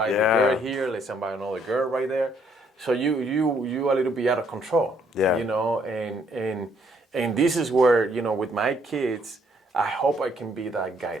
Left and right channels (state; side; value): normal; both; correlation 0.67